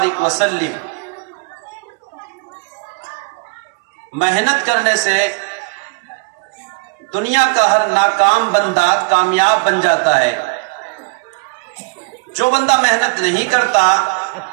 وسلم. محنت کرنے سے دنیا کا ہر ناکام بندہ کامیاب بن جاتا ہے. جو بندہ محنت نہیں کرتا،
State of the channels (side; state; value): left; quieter; 30.3 dB